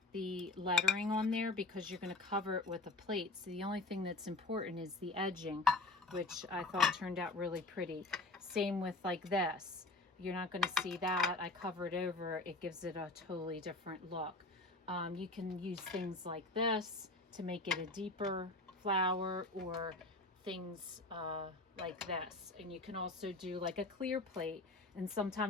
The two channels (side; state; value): right; quieter; 3.0 dB